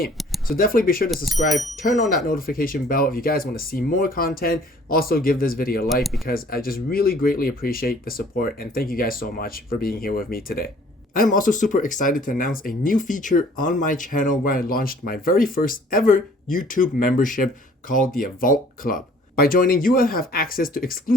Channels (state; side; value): normal; both; correlation 0.55